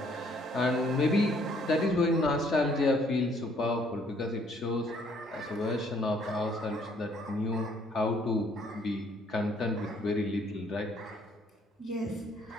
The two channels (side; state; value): both; normal; correlation 0.64